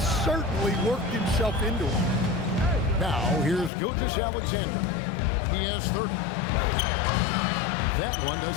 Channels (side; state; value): right; drops out; at 3.7 s